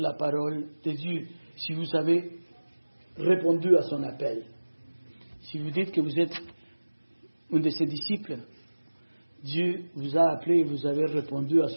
parole de Dieu, si vous avez répondu à son appel. Si vous dites que vous êtes un de ses disciples, Dieu vous a appelé et vous avez répondu à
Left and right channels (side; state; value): both; inverted; correlation -1.00